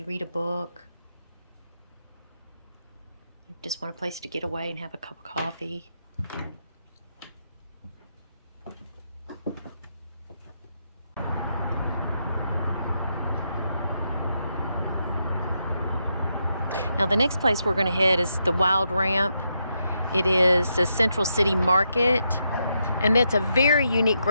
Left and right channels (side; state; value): both; inverted; correlation -0.82